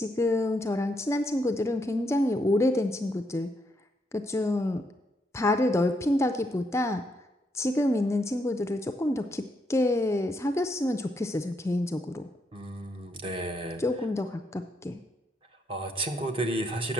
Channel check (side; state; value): both; normal; correlation 0.77